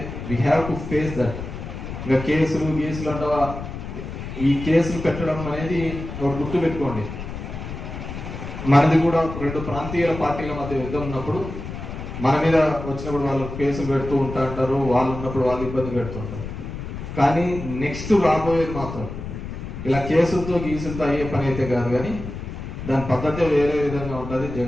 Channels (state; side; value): noise; left; rumble, 8 dB below the sound